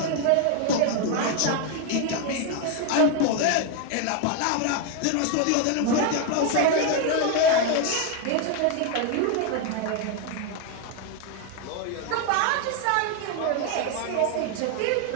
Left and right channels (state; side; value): different; both; correlation 0.01